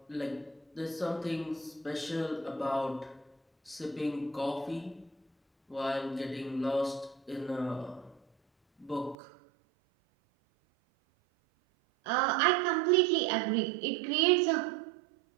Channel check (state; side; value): drops out; left; at 9.2 s